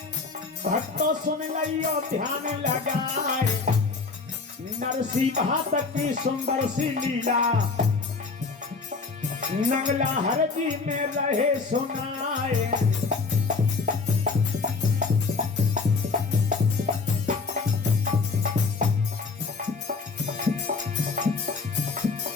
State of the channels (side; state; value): right; quieter; 4.3 dB